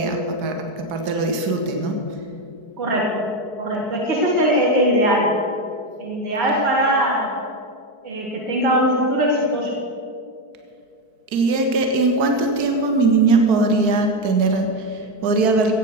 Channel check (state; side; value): late; left; 4.6 ms